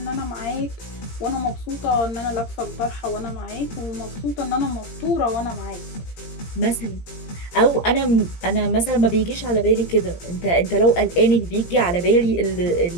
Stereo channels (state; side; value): late; right; 17 ms